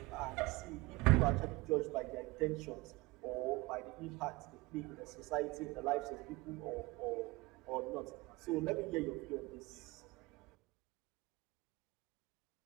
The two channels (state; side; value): quieter; left; 22.7 dB